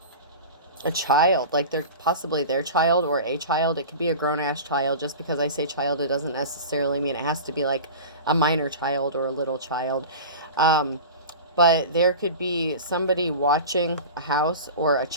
child, like they're possibly their child or a child. It could be a grown-ass child. Just because I say child, it doesn't necessarily mean it has to be like a minor child or a little child. But there could be somebody watching a house or a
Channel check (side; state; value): both; inverted; correlation -0.33